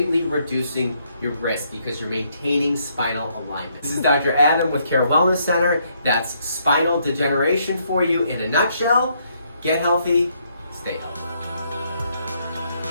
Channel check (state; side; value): inverted; both; correlation -0.72